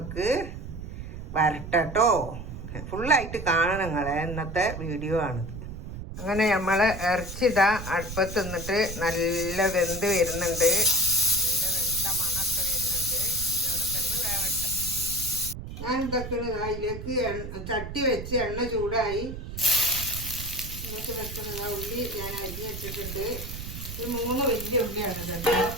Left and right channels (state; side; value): noise; right; rumble, 9 dB below the sound